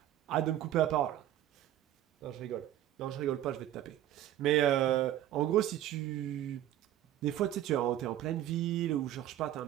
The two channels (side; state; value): left; quieter; 12.5 dB